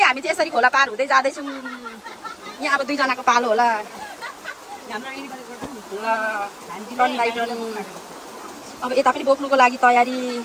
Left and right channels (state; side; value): identical; both; correlation 1.00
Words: हामी चाहिँ यसरी खोला पार हुँदै जाँदैछौँ यहाँ अब दुईजनाको पालो होला अब यता पनि बोक्नुको लागि तयारी